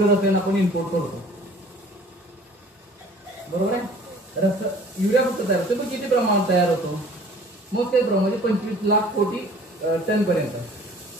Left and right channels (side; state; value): both; normal; correlation 0.50